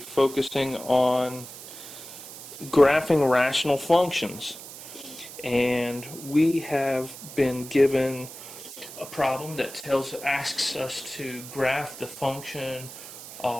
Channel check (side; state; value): right; noise; hiss, 14 dB below the sound